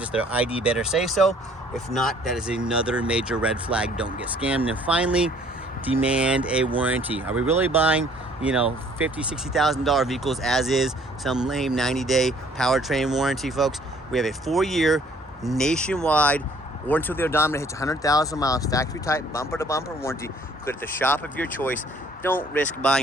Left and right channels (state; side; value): normal; both; correlation 0.58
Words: their ID better say so. If not, that is another major red flag. Don't get scammed. And finally, demand a warranty. Are we really buying, you know, $50,000, $60,000 vehicles as is, some lame 90-day powertrain warranty, folks? We have a 4-year nationwide, or until the odometer hits 100,000 miles, factory type, bumper to bumper warranty. Put at the shop of your choice. Don't risk